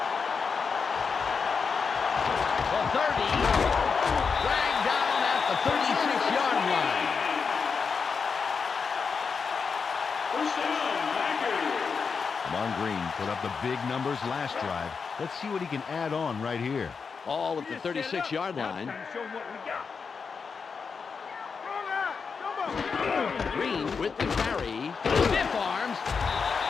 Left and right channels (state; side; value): quieter; right; 5.5 dB